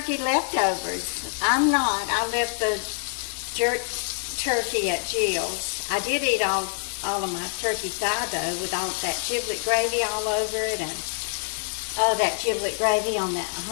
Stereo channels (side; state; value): right; silent; 61 dB below the other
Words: leftovers. I'm not. I left the jerk turkey at Jill's. I did eat all of my turkey thigh though, with all that giblet gravy all over it, and oh, that giblet gravy on that